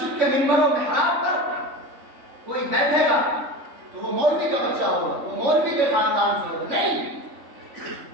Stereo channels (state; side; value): late; left; 3.5 ms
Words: کے منبر و محراب پر کوئی بیٹھے گا تو وہ مولوی کا بچہ ہوگا، وہ مولوی کے خاندان سے ہوگا، نہیں۔